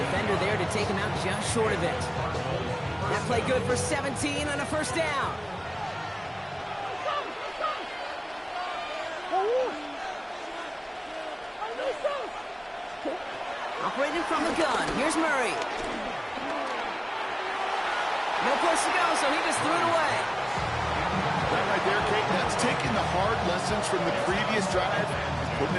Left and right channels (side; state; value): both; identical; correlation 1.00